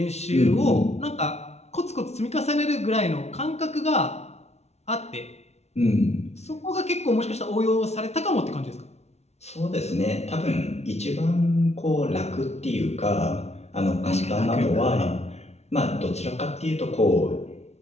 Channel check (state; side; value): late; right; 0.31 ms